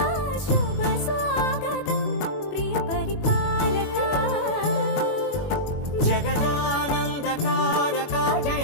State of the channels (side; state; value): right; late; 21 ms